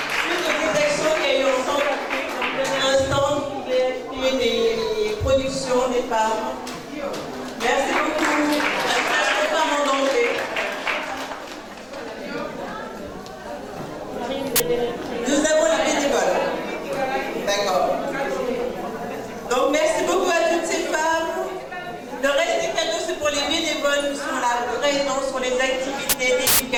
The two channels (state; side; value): identical; both; correlation 1.00